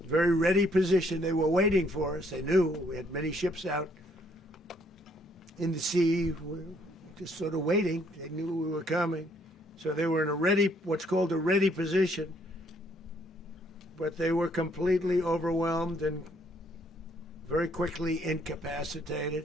very ready position. They were waiting for us. They knew we had many ships out in the sea, just sort of waiting. They knew we were coming. So they were in what's called a ready position. But they were completely overwhelmed and very quickly incapacitated.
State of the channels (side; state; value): both; normal; correlation 0.67